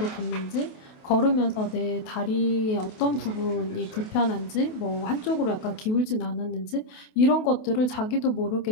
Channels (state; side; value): late; right; 28 ms